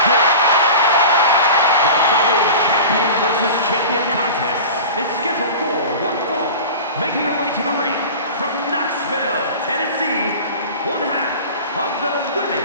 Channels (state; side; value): inverted; both; correlation -0.34